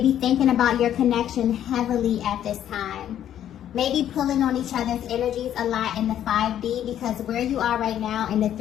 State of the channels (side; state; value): right; quieter; 10.7 dB